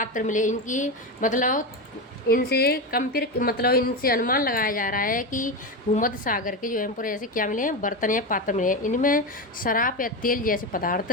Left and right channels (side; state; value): both; normal; correlation 0.16